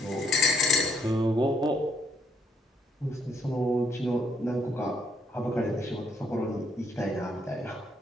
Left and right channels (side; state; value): both; normal; correlation 0.71